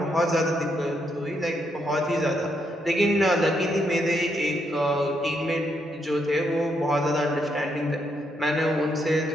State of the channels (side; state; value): both; normal; correlation 0.77